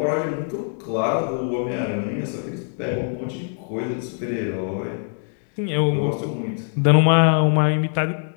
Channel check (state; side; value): silent; right; digital silence